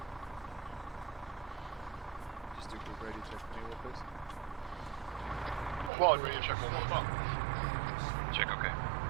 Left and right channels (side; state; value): left; drops out; at 5.9 s